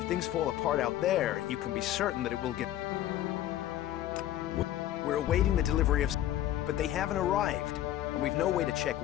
things fall apart out there, you can be certain that it will get... We're awaiting the delivery of... But they haven't arrived. And we've no way to check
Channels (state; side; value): quieter; right; 12.8 dB